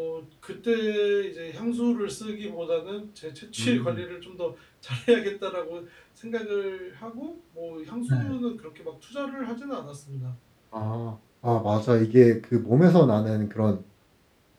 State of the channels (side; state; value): both; identical; correlation 1.00